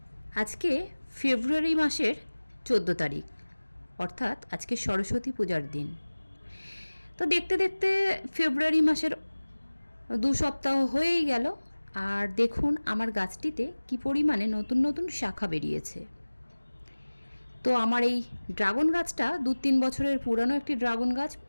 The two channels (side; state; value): both; inverted; correlation -1.00